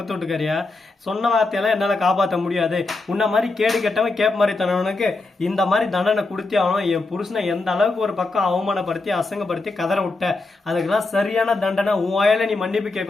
வீட்டுக்காரியா? சொன்ன வார்த்தையெல்லாம் என்னால காப்பாற்ற முடியாது. உன்ன மாதிரி கேடு கெட்டவன் கேப் மாதிரி தனவனுக்கு இந்த மாதிரி தண்டனை கொடுத்தே ஆகணும். என் புருஷனை எந்த அளவுக்கு ஒரு பக்கம் அவமானப்படுத்தி அசங்கப்படுத்தி கதற விட்ட, அதுக்கெல்லாம் சரியான தண்டனை உன் வாயில நீ மன்னிப்பு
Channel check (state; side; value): quieter; right; 3.4 dB